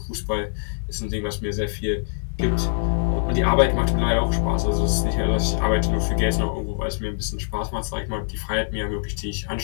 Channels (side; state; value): right; silent; digital silence